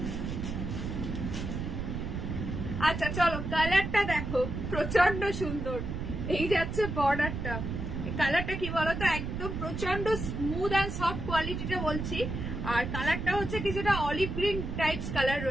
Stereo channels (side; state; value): right; noise; rumble, 4 dB below the sound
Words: আচ্ছা চলো কালারটা দেখো, প্রচন্ড সুন্দর। এই যাচ্ছে বর্ডারটা, কালারটা কি বলতো, একদম প্রচন্ড স্মুথ অ্যান্ড সফট কোয়ালিটিটা বলছি। আর কালারটা হচ্ছে কিছুটা অলিভ গ্রিন টাইপস কালার